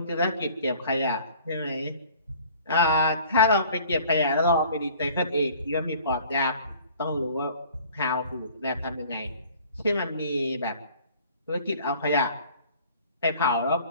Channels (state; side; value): inverted; both; correlation -0.50